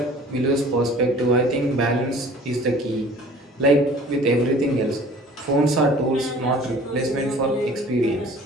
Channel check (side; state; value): both; normal; correlation 0.48